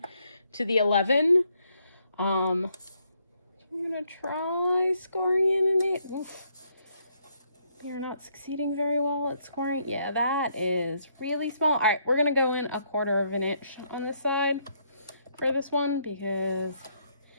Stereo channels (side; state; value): both; inverted; correlation -0.73